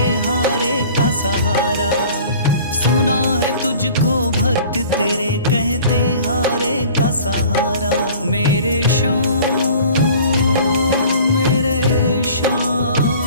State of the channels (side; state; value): both; inverted; correlation -0.46